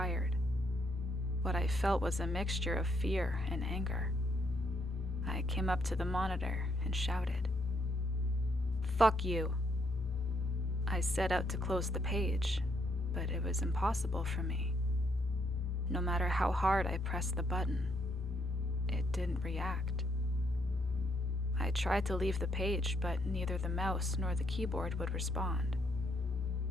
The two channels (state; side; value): normal; both; correlation 0.74